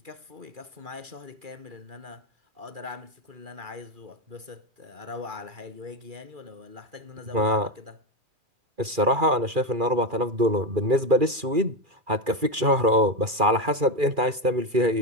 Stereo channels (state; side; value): late; left; 2.4 ms